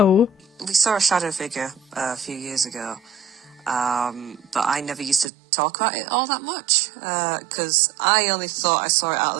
We saw a shadow figure a few years ago, but I never used to talk about it all that much because I only thought I saw it out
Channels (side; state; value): left; drops out; at 5.3 s